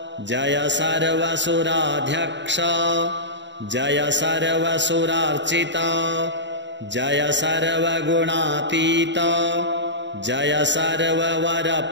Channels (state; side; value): late; left; 0.52 ms